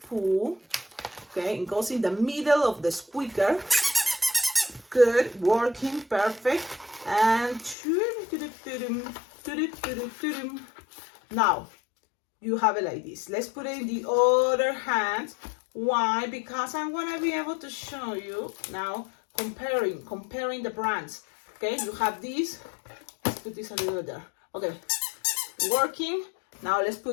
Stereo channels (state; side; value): drops out; right; at 7.8 s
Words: pull. Okay, it goes in the middle of the squeaker. Good, working, perfect. And now you have it like this. Let's put it in the other hand. Why? Because I'm gonna be able to show you now comparing the brands. Okay, you have this. Let's put this a little bit there. Okay, working. Now let's